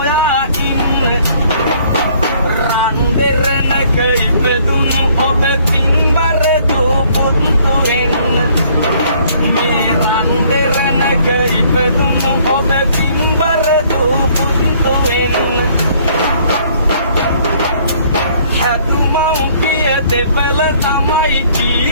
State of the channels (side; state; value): both; inverted; correlation -0.61